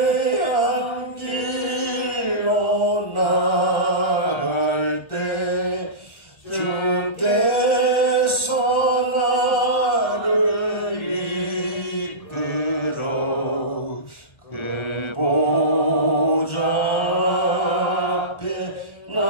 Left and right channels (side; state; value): right; late; 1.3 ms